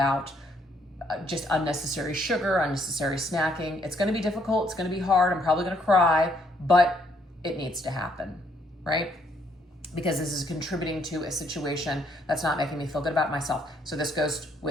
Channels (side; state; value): both; normal; correlation 0.69